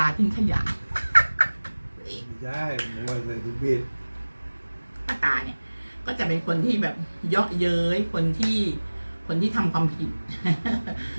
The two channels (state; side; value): inverted; both; correlation -1.00